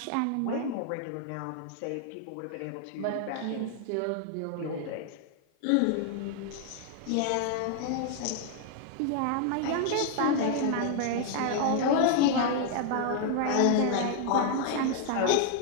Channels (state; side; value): different; both; correlation 0.00